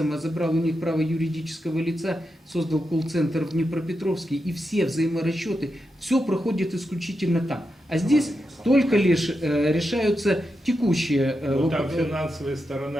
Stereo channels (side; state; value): both; normal; correlation 0.87